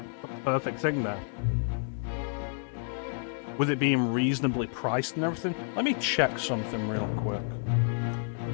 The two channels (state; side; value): silent; right; digital silence